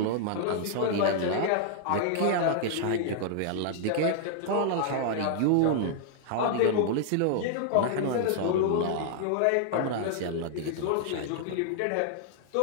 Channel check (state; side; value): different; both; correlation -0.01